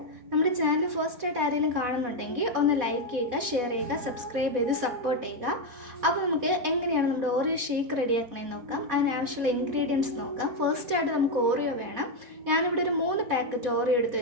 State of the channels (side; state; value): left; late; 4.1 ms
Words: നമ്മുടെ ചാനൽ ഫസ്റ്റ് ആയിട്ട് ആരെങ്കിലും കാണുന്നുണ്ടെങ്കിൽ ഒന്ന് ലൈക്ക് ചെയ്യുക, ഷെയർ ചെയ്യുക, സബ്സ്ക്രൈബ് ചെയ്ത് സപ്പോർട്ട് ചെയ്യുക. അപ്പോൾ നമുക്ക് എങ്ങനെയാണ് നമ്മുടെ ഓറിയോ ഷേക്ക് റെഡിയാക്കണമെന്ന് നോക്കാം. അതിനാവശ്യമുള്ള ഇൻഗ്രീഡിയൻസ് നോക്കാം. ഫസ്റ്റ് ആയിട്ട് നമുക്ക് ഓറിയോ വേണം. ഞാനിവിടെ ഒരു 3 പാക്കറ്റ് ഓറിയോ എടുത്ത്